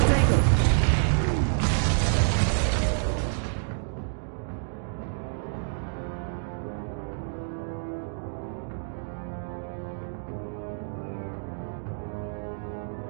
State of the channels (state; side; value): silent; left; digital silence